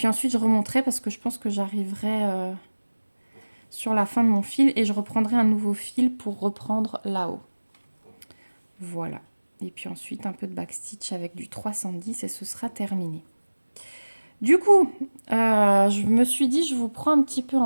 ensuite je remonterai parce que je pense que j'arriverai sur la fin de mon fil et je reprendrai un nouveau fil pour reprendre là-haut. Voilà. Et puis ensuite, un peu de backstitch avec du 310 et ce sera terminé. Du coup, je me suis dit, je vous prends un petit peu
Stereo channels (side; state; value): both; inverted; correlation -1.00